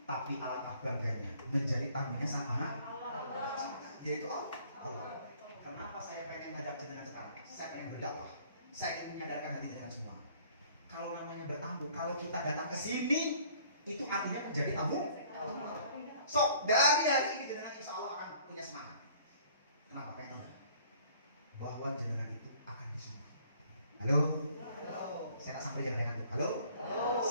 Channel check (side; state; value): both; inverted; correlation -0.56